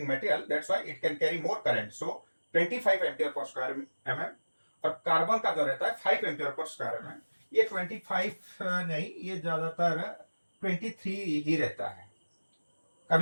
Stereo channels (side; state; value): both; inverted; correlation -1.00